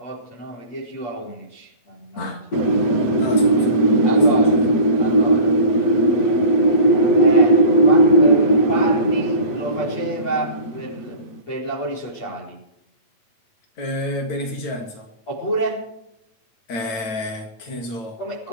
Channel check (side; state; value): right; late; 9.0 ms